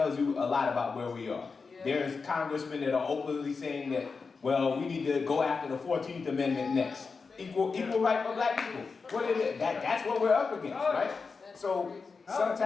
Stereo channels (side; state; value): right; quieter; 4.8 dB